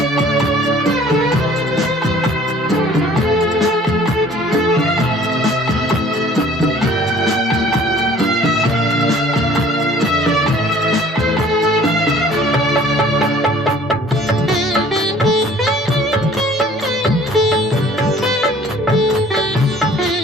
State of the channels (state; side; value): normal; both; correlation 0.54